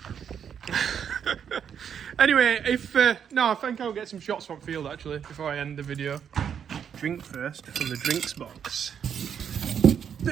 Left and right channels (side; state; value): left; quieter; 8.0 dB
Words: Anyway, no, I think I'll get some shots from field actually before I end the video. Drink first from the drinks box.